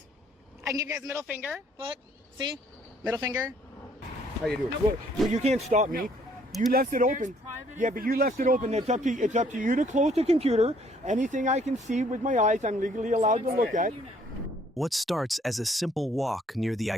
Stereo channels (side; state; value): both; normal; correlation 0.63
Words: I can give you guys a middle finger. Look, see? Middle finger. How you doing? Nope. Well, you can't stop me. You left it open. Yeah, but you left it open. It's up to you to close the computer. Anything I can see with my eyes, I'm legally allowed to look at. What starts as a simple walk near the